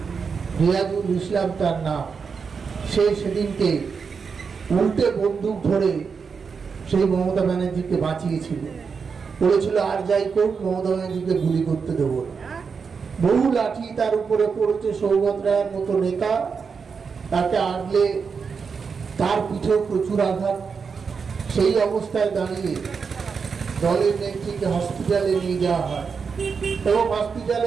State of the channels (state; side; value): quieter; left; 5.6 dB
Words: রিয়াজুল ইসলাম তার নাম, সে সেদিনকে উল্টে বন্দুক ধরে সেই মমতা ব্যানার্জিকে বাঁচিয়েছিল। বলেছিল আর যাই করুক মমতা ব্যানার্জিকে গুলি করতে দেবো না। বহু লাঠি তার উপরে পড়েছে, সৌগত রায়ের মতো নেতা তাকে আটলে তার পিঠেও প্রচুর আঘাত। সেই অবস্থায় দাঁড়িয়ে দলের নেত্রীকে হসপিটালে নিয়ে যাওয়া হয় এবং